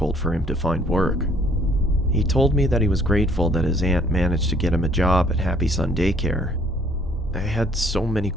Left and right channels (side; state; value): both; normal; correlation 0.61